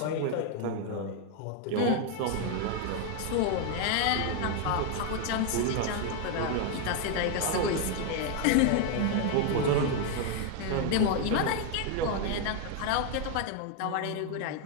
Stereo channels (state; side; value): different; both; correlation 0.01